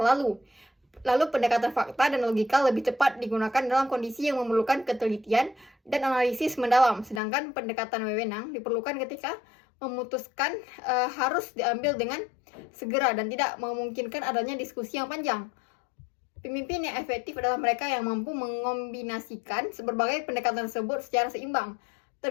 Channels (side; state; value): right; drops out; at 7.2 s